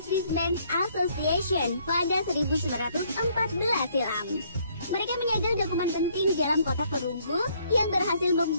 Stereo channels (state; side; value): inverted; both; correlation -0.66